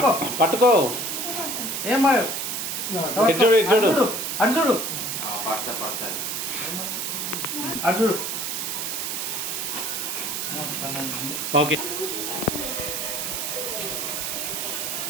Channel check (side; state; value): right; noise; hiss, 2 dB below the sound